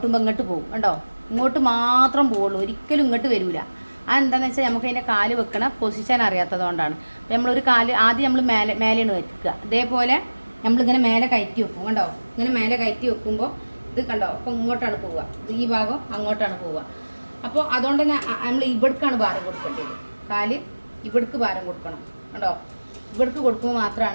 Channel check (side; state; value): both; inverted; correlation -1.00